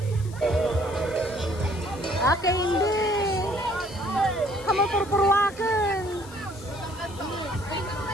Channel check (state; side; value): noise; left; hiss, 20 dB below the sound